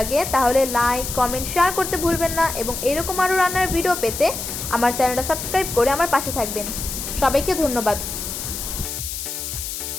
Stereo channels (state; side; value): noise; left; hiss, 6 dB below the sound